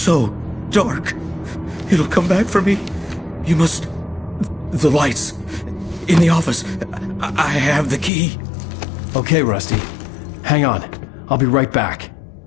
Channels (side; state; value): right; drops out; at 8.1 s